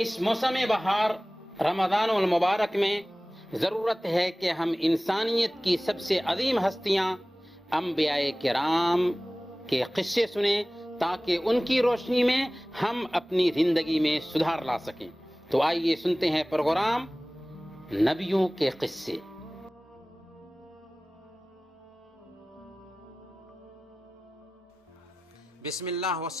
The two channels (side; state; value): both; normal; correlation 0.98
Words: اس موسم بہار رمضان المبارک میں ضرورت ہے کہ ہم انسانیت کی سب سے عظیم ہستیاں انبیاء کرام کے قصے سنیں تاکہ ان کی روشنی میں ہم اپنی زندگی میں سدھار لا سکیں۔ تو آئیے سنتے ہیں پروگرام نبیوں کے قصے۔ بسم اللہ